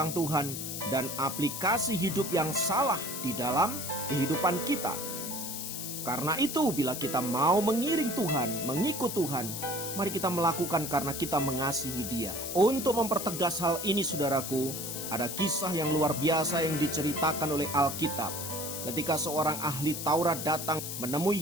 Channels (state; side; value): noise; left; hiss, 6 dB below the sound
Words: Tuhan dan aplikasi hidup yang salah di dalam kehidupan kita. Karena itu, bila kita mau mengiring Tuhan, mengikut Tuhan, mari kita melakukan karena kita mengasihi Dia. Untuk mempertegas hal ini, saudaraku, ada kisah yang luar biasa yang diceritakan oleh Alkitab. Ketika seorang ahli Taurat datang menemui